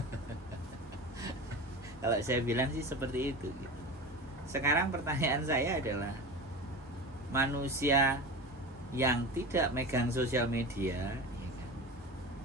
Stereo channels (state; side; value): normal; both; correlation 0.30